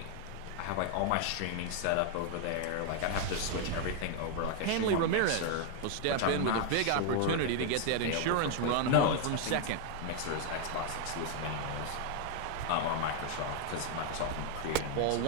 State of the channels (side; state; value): both; different; correlation 0.00